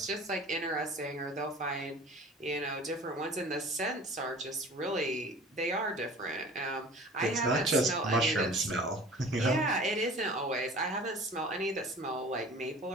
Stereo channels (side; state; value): both; normal; correlation 0.43